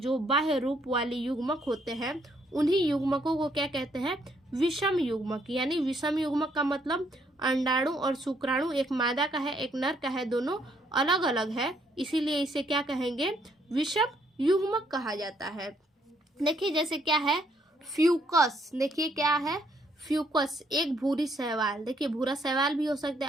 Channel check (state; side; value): normal; both; correlation 0.70